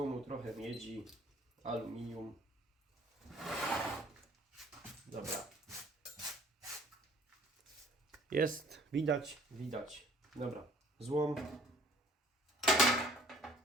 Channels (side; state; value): both; normal; correlation 0.55